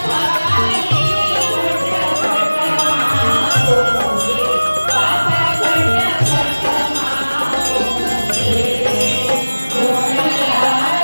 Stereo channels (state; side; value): inverted; both; correlation -1.00